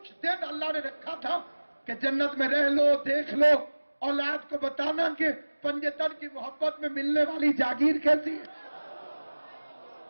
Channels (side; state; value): both; inverted; correlation -1.00